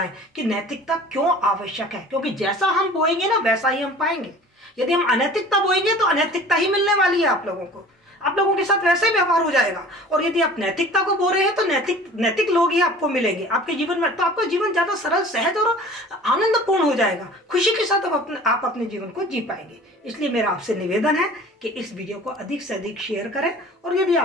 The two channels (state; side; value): normal; both; correlation 0.44